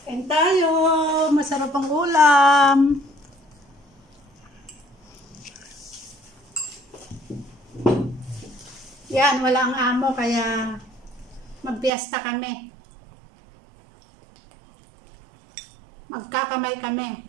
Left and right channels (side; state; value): left; drops out; at 11.9 s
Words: Kain tayo. Masarap ang ulam. Yan, wala ang amo kaya magpiesta kami. Magkakamay kami.